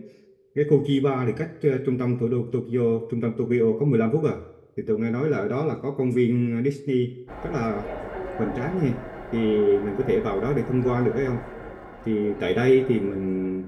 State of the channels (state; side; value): identical; both; correlation 1.00